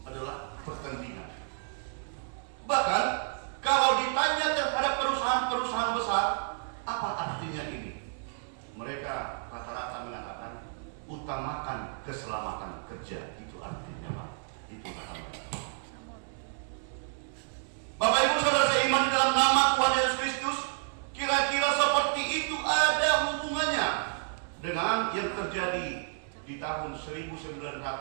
adalah pertandingan. Bahkan kalau ditanya terhadap perusahaan-perusahaan besar, apa artinya ini? Mereka rata-rata mengatakan utamakan keselamatan kerja. Itu artinya, Pak. Itu kata mereka. Bapak Ibu saudara seiman di dalam nama Tuhan Yesus Kristus, kira-kira seperti itu ada hubungannya dengan yang terjadi di tahun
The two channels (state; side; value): silent; left; digital silence